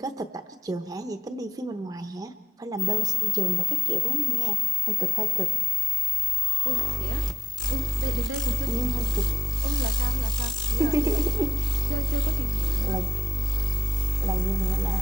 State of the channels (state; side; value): normal; both; correlation 0.84